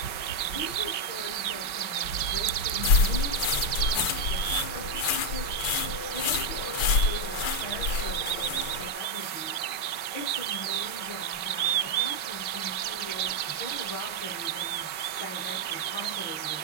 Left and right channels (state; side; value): late; right; 6.0 ms